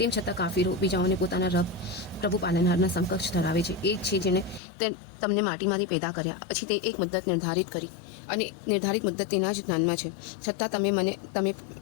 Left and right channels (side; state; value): right; drops out; at 4.6 s